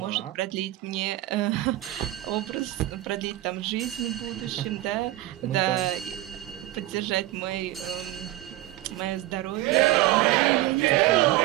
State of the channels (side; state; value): left; quieter; 16.3 dB